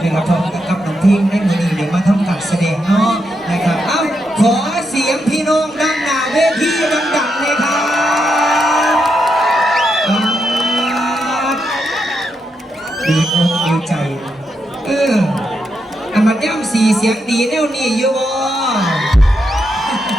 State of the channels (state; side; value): normal; both; correlation 0.83